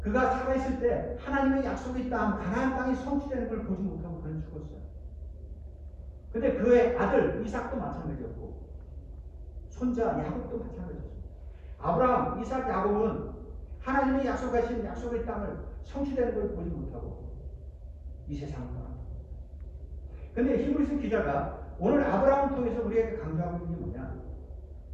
그가 살아있을 때 하나님의 약속의 땅, 가나안 땅이 성취되는 걸 보지 못하고 그는 죽었어요. 근데 그의 아들 이삭도 마찬가지였고 손자 야곱도 마찬가지였습니다. 아브라함, 이삭, 야곱은 하나님의 약속하신 약속의 땅을 성취되는 걸 보지 못하고 이 세상을 떠납니다. 근데 히브리서 기자가 오늘 아브라함을 통해서 우리에게 강조하고 있는 게 뭐냐?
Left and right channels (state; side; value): identical; both; correlation 1.00